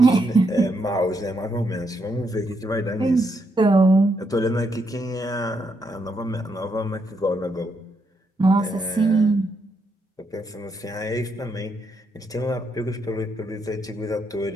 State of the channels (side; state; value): both; normal; correlation 0.78